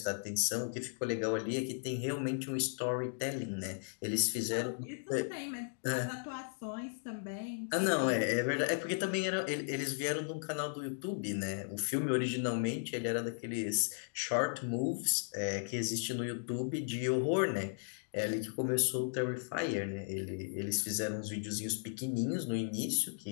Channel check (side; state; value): right; silent; digital silence